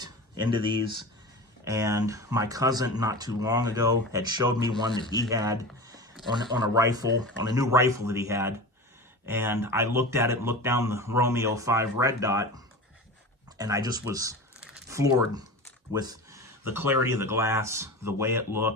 into these, and my cousin not too long ago had showed me one that he had on a rifle, on a new rifle that he had. And I looked at it, looked down the Romeo 5 red dot, and I just was floored with the clarity of the glass, the way it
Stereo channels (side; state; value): both; normal; correlation 0.31